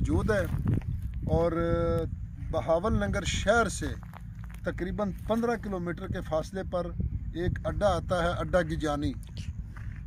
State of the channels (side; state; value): both; identical; correlation 1.00